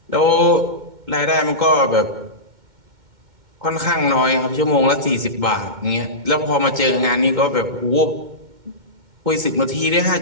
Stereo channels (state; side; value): late; left; 2.1 ms